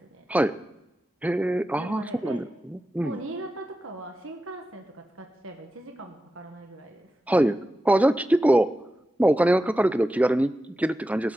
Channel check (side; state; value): both; normal; correlation 0.92